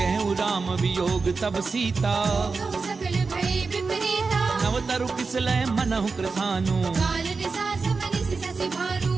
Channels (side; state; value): left; quieter; 4.4 dB